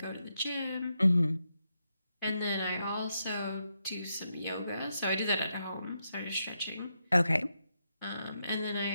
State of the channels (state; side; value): inverted; both; correlation -0.83